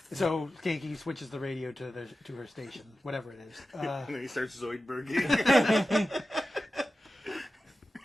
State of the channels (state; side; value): normal; both; correlation 0.94